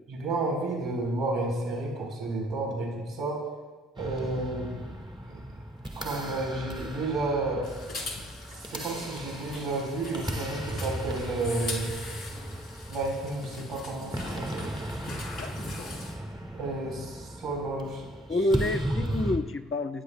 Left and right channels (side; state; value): both; normal; correlation 0.57